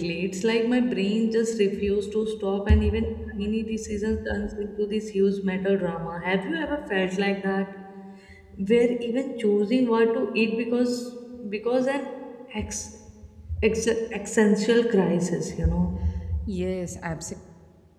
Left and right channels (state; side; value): identical; both; correlation 1.00